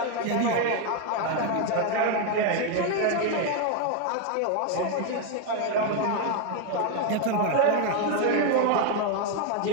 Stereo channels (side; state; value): both; different; correlation 0.01